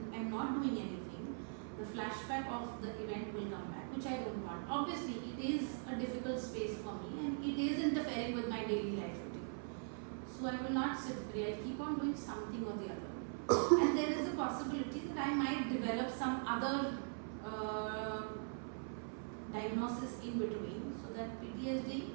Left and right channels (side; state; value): left; silent; 50 dB below the other